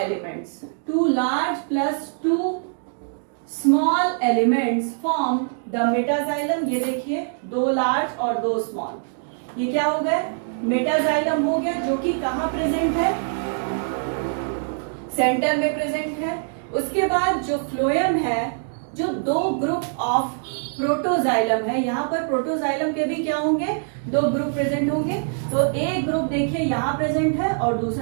two large plus two small elements form the metaxylem. ये देखिए, दो लार्ज और दो स्मॉल, ये क्या हो गया? मेटाजाइलम हो गया, जो कि कहां प्रेजेंट है? सेंटर में प्रेजेंट है। उसके बाद जो फ्लोएम है, जो दो ग्रुप ऑफ प्रोटोजाइलम है, यहां पर प्रोटोजाइलम के भी क्या होंगे? दो ग्रुप प्रेजेंट होंगे। तो एक ग्रुप देखिए यहां प्रेजेंट है और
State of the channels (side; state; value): left; silent; digital silence